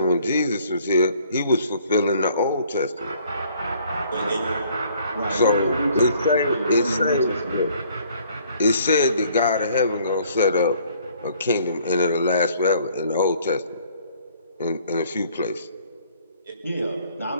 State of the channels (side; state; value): both; inverted; correlation -0.60